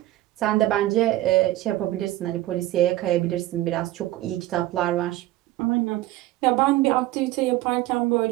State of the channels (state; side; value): quieter; left; 16.2 dB